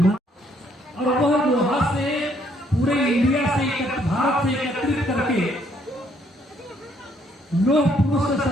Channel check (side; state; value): both; normal; correlation 0.68